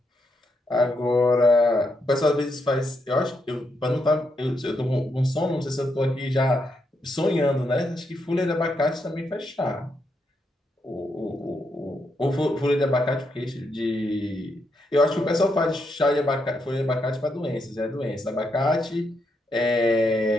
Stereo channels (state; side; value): normal; both; correlation 0.80